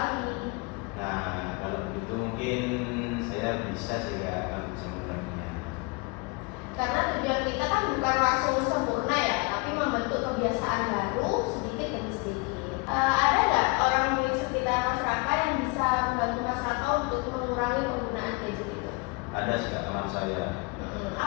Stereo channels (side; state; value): right; quieter; 28.7 dB